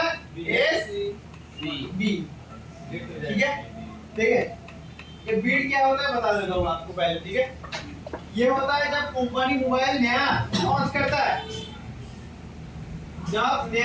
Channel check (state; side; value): identical; both; correlation 1.00